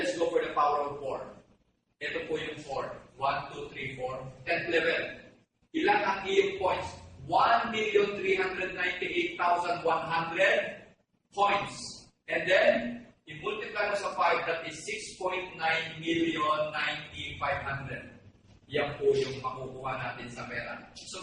go for the power of 4. Ito po yung 4. 1, 2, 3, 4. 10th level. Ilan ang iyong points? 1,398,100 points. And then, i-multiply mo sa 5, that is 6.9,090,500. Yan po yung makukuha natin sa pera. So,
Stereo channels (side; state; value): both; identical; correlation 1.00